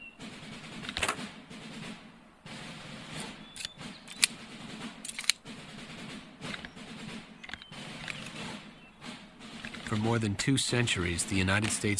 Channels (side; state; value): both; identical; correlation 1.00